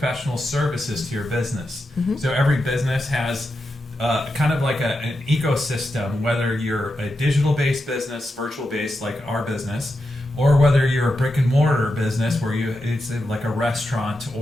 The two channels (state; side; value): normal; both; correlation 0.88